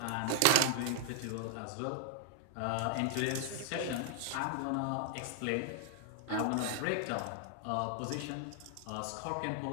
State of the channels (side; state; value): both; different; correlation 0.00